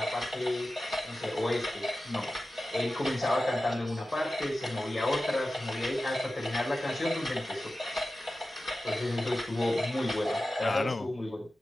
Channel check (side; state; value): both; normal; correlation 0.94